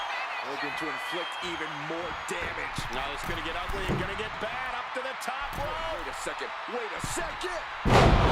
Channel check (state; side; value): identical; both; correlation 1.00